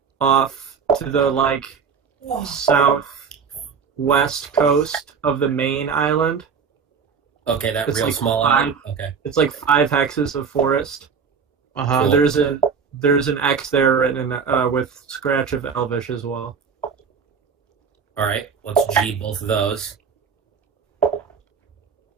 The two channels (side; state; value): left; quieter; 6.1 dB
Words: off to the southwest coast of the main island. Okay, that It's real like small five- island. Okay. It's like 5 hexes of forest. Uh-huh. So there's an X there written with scratch of Elvish as well. All right, let's G both of those.